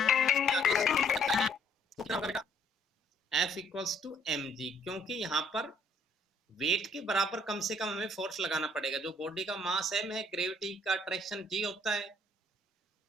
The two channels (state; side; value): normal; both; correlation 0.64